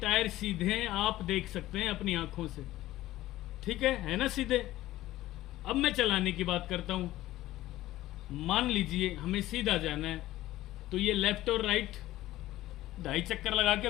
सीधे हैं, आप देख सकते हैं अपनी आंखों से। ठीक है ना सीधे। अब मैं चलाने की बात करता हूं। मान लीजिए हमें सीधा जाना है, तो ये लेफ्ट और राइट 2.5 चक्कर लगा के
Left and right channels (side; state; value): right; quieter; 15.7 dB